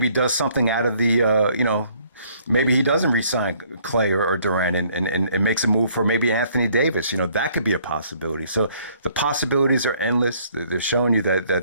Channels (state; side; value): inverted; both; correlation -0.62